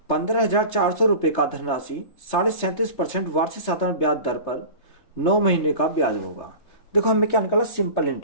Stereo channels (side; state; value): right; late; 3.3 ms